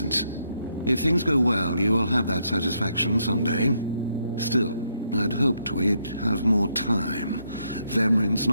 If things go well, you will have that satisfaction someday. Still, I'd hoped we'd have more time. Vemrin's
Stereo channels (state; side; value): inverted; both; correlation -0.76